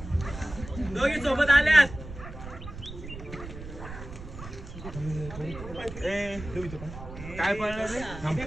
दोघी सोबत आल्यात. ए ठेव इथं पण. काय पडलं रे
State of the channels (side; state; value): right; noise; rumble, 12 dB below the sound